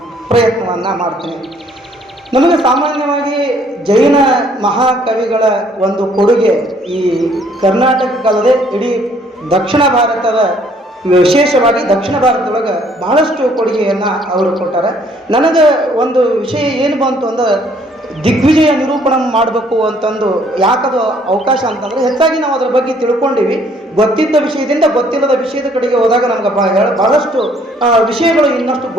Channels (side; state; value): both; normal; correlation 0.63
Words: ಪ್ರಯತ್ನವನ್ನು ಮಾಡ್ತೀನಿ. ನಮಗೆ ಸಾಮಾನ್ಯವಾಗಿ ಜೈನ ಮಹಾಕವಿಗಳ ಒಂದು ಕೊಡುಗೆ ಈ ಕರ್ನಾಟಕಕ್ಕಲ್ಲದೆ ಇಡೀ ದಕ್ಷಿಣ ಭಾರತದ, ವಿಶೇಷವಾಗಿ ದಕ್ಷಿಣ ಭಾರತದೊಳಗೆ ಬಹಳಷ್ಟು ಕೊಡುಗೆಯನ್ನು ಅವರು ಕೊಟ್ಟಾರೆ. ನನಗೆ ಒಂದು ವಿಷಯ ಏನು ಬಂತು ಅಂದ್ರೆ ದಿಗ್ವಿಜಯ ನಿರೂಪಣೆ ಮಾಡಬೇಕು ಅಂತಂದು ಯಾಕದು ಅವಕಾಶ ಅಂತಂದರೆ ಹೆಚ್ಚಾಗಿ ನಾವು ಅದರ ಬಗ್ಗೆ ತಿಳ್ಕೊಂಡಿವಿ. ಗೊತ್ತಿದ್ದ ವಿಷಯದಿಂದ ಗೊತ್ತಿಲ್ಲದ ವಿಷಯದ ಕಡೆಗೆ ಹೋದಾಗ ನಮ್ಗೆ ಬಹಳಷ್ಟು ವಿಷಯಗಳು ಇನ್ನಷ್ಟು